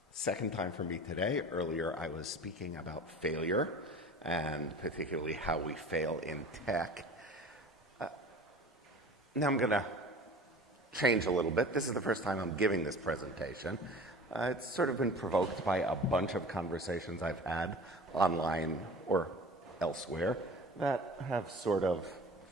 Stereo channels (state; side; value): normal; both; correlation 0.40